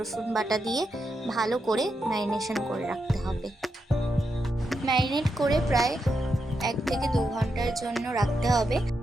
বাটা দিয়ে ভালো করে ম্যারিনেশন করে রাখতে হবে। ম্যারিনেট করে প্রায় 1 থেকে 2 ঘন্টার জন্য রাখতে হবে।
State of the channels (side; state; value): both; normal; correlation 0.85